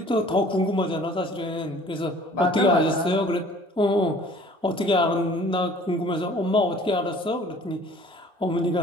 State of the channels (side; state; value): both; normal; correlation 0.51